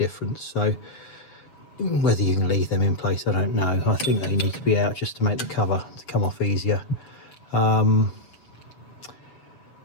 So whether you can leave them in place, I don't know. I think they need to be out just to make the cover to come off easier.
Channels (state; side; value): late; right; 7.3 ms